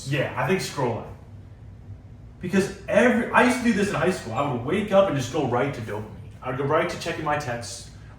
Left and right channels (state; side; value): identical; both; correlation 1.00